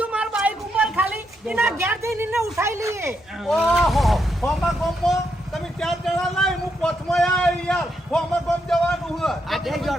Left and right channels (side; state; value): both; normal; correlation 0.80